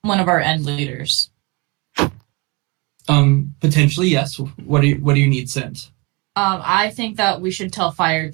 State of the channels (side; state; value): left; quieter; 27.0 dB